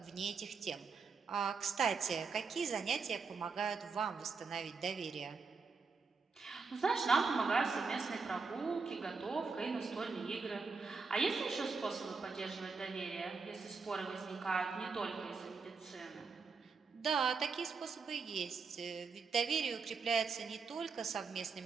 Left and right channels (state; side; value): quieter; left; 4.9 dB